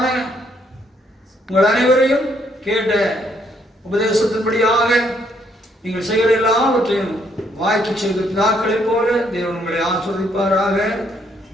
உங்கள் அனைவரையும் கேட்ட உபதேசத்தின்படியாக நீங்கள் செய்கிற எல்லாவற்றையும் வாய்க்கு செய்த பிதாக்களைப் போல தேவன் உங்களை ஆசீர்வதிப்பாராக.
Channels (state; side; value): normal; both; correlation 0.70